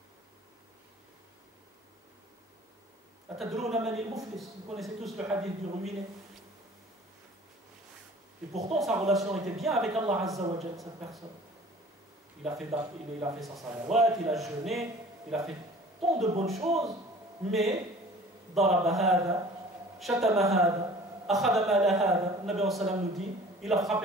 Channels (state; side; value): normal; both; correlation 0.46